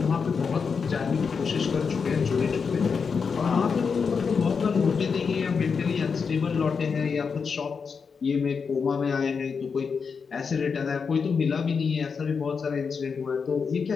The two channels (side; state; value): right; quieter; 5.7 dB